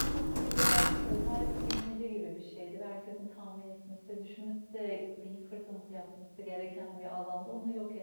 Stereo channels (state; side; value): inverted; both; correlation -1.00